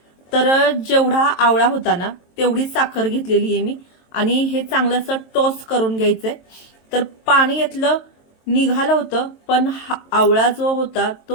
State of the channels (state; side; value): late; right; 23 ms